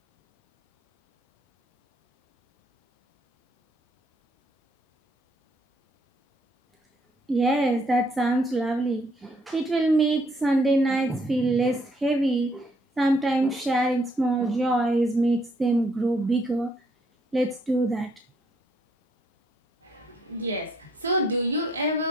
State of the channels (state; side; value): normal; both; correlation 0.68